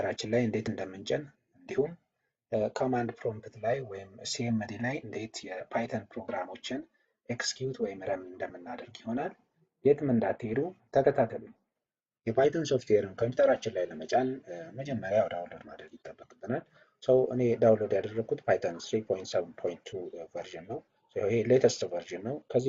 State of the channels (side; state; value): both; identical; correlation 1.00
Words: ላይ እንዴት እንደምንጭን እንዲሁም ኮማንድ ፕሮምፕት ላይ ወይም ሲኤምዲ ላይ እንዴት የፓይተን ፕሮግራሞችን ኤክስኪዩት ወይም ረን እንደምናደርግ ይሆናል። የትም እንዳትሄዱ ተከታተሉ። የፓይተን ሶፍትዌርን ኮምፒውተራችን ላይ ለመጫን መጀመሪያ ዳውንሎድ ማድረግ ይጠበቅብናል። እኔ ዳውንሎድ ያደረኩት ፓይተን 3.7.2 ቨርዥን ነው። ይሄ ሌተስት ቨርዥን ነው። ከዚህ